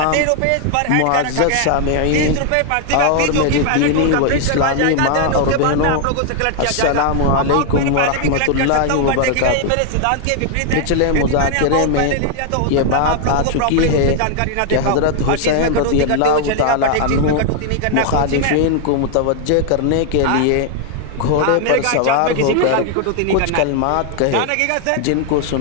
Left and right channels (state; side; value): different; both; correlation 0.00